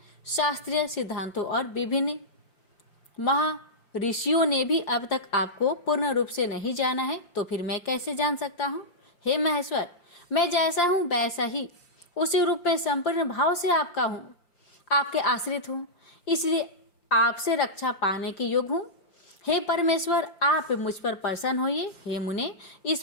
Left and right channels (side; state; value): right; late; 5.8 ms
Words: शास्त्रीय सिद्धांतों और विभिन्न ऋषियों ने भी अब तक आपको पूर्ण रूप से नहीं जाना है, तो फिर मैं कैसे जान सकता हूँ। हे महेश्वर, मैं जैसा हूँ वैसा ही उसी रूप में संपूर्ण भाव से आपका हूँ, आपके आश्रित हूँ, इसलिए आपसे रक्षा पाने के योग्य हूँ। हे परमेश्वर, आप मुझ पर प्रसन्न होइए। हे मुने, इस